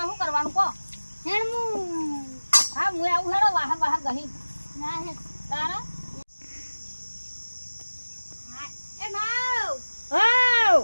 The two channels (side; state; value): both; inverted; correlation -1.00